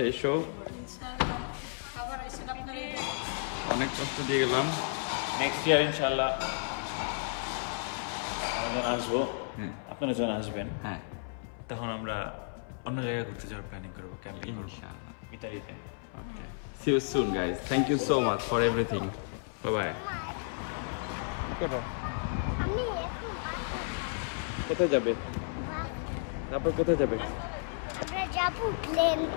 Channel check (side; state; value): right; silent; 56 dB below the other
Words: এসো। অনেক কষ্ট দিয়ে গেলাম। নেক্সট ইয়ার ইনশাআল্লাহ আমরা আসবো। হ্যাঁ আপনারা যখন আসবেন হ্যাঁ তখন আমরা অন্য জায়গায় ঘুরতে যাওয়ার প্ল্যানিং করবো, ক্যাম্পিং করবো ইনশাআল্লাহ। ইতালিতে। Okay. See you soon, guys. Thank you so much for everything. Bye bye. আমি কোথায় যাবে? তারপর কোথায় যাবে? আমরা যাবো প্লেন।